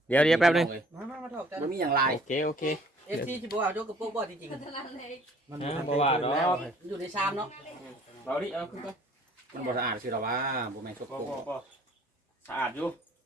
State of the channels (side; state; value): both; normal; correlation 0.56